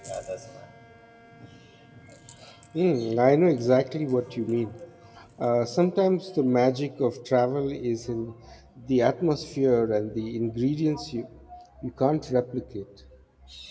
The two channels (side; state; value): both; identical; correlation 1.00